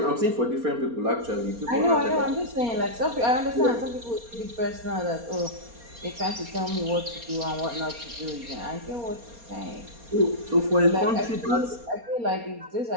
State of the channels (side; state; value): left; late; 4.3 ms